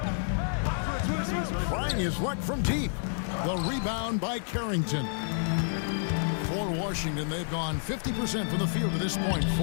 Trying his luck from deep. The rebound by Carrington. For Washington, they've gone 50% from the field to this point,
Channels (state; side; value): silent; right; digital silence